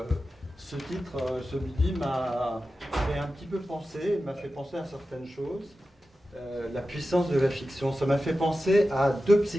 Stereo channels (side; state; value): both; normal; correlation 0.93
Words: ce titre, celui-ci m'a fait un petit peu penser, m'a fait penser à certaines choses. La puissance de la fiction, ça m'a fait penser à deux